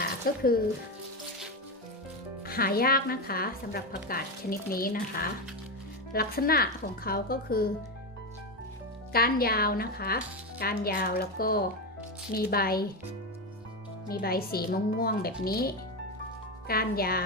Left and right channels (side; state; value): both; normal; correlation 0.14